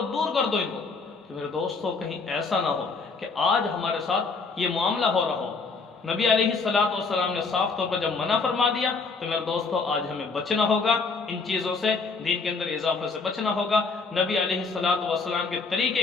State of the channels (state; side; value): quieter; right; 4.4 dB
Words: دور کر دو ان کو۔ تو میرے دوستو کہیں ایسا نہ ہو کہ آج ہمارے ساتھ یہ معاملہ ہو رہا ہو۔ نبی علیہ السلام نے صاف طور پر جب منع فرما دیا تو میرے دوستو آج ہمیں بچنا ہوگا، ان چیزوں سے، دین کے اندر اضافے سے بچنا ہوگا، نبی علیہ السلام کے